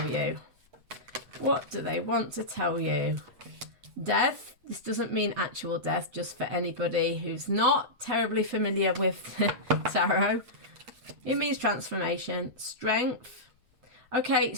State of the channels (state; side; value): late; left; 8.0 ms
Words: you? What do they want to tell you? Death. This doesn't mean actual death, just for anybody who's not terribly familiar with tarot. It means transformation. Strength. Okay,